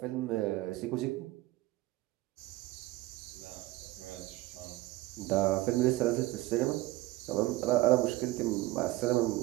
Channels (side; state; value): left; quieter; 17.9 dB